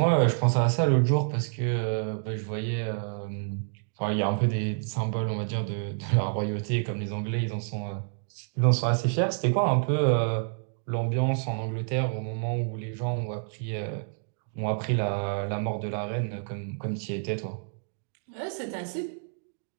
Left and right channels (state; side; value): silent; left; digital silence